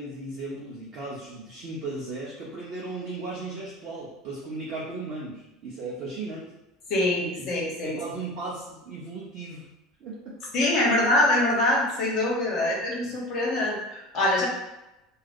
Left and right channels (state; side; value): normal; both; correlation 0.34